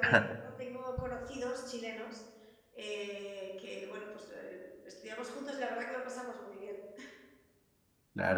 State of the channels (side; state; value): both; identical; correlation 1.00